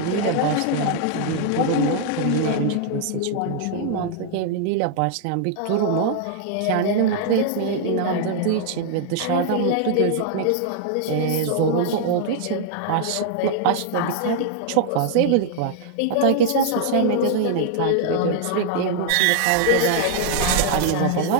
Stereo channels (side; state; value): both; different; correlation 0.00